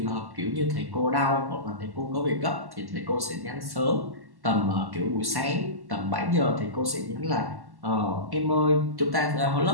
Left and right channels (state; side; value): late; left; 1.1 ms